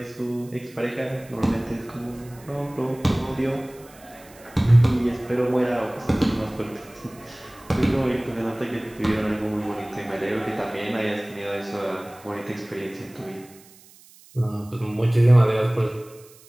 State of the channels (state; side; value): noise; right; hiss, 24 dB below the sound